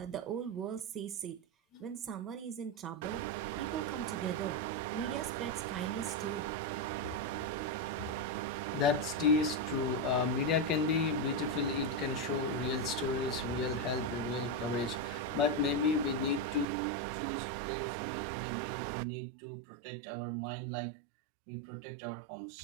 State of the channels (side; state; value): left; drops out; at 16.7 s